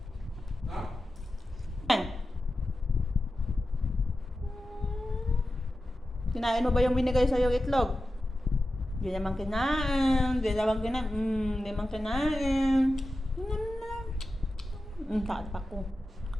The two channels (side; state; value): both; normal; correlation 0.93